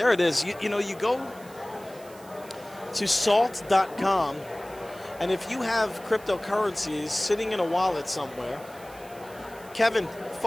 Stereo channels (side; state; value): right; noise; hiss, 22 dB below the sound